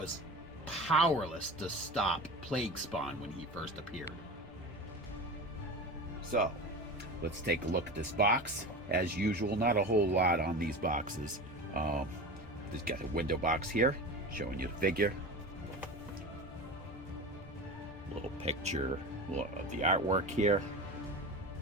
powerless to stop Plague Spawn when he first appeared. So, let's take a look at this box. As usual, not a whole lot on these boxes. Just got a window box here showing you the figure. Little picture of the artwork here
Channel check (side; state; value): both; normal; correlation 0.30